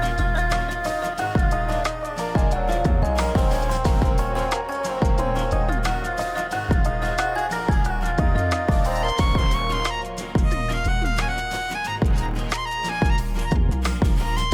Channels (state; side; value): identical; both; correlation 1.00